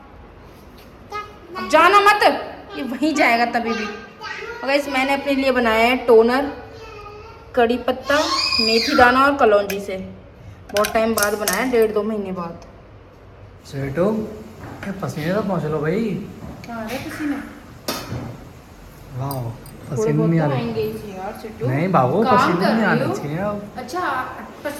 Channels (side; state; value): both; identical; correlation 1.00